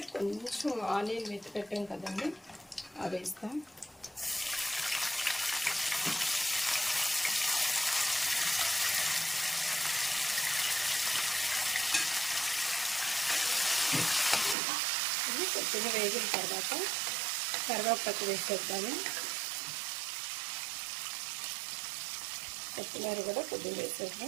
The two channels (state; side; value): drops out; left; at 14.6 s